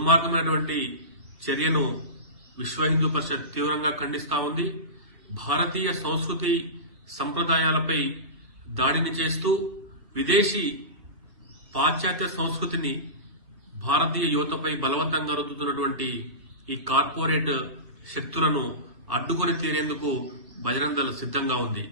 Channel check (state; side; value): late; left; 1.3 ms